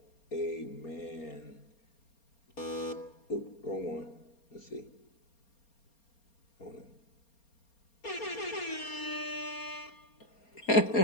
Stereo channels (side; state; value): right; late; 4.3 ms